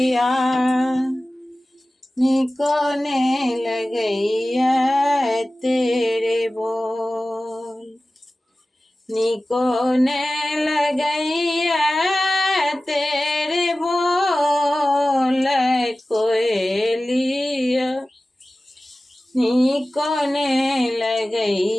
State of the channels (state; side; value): normal; both; correlation 0.96